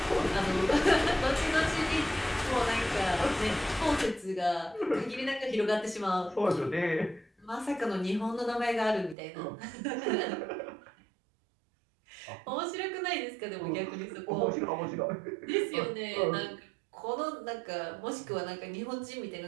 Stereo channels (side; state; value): left; drops out; at 9.2 s